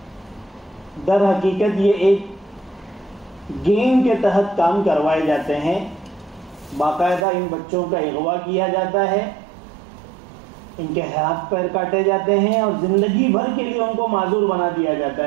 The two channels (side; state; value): left; drops out; at 7.2 s